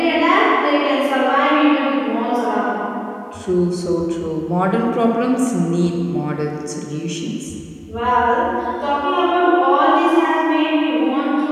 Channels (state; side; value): identical; both; correlation 1.00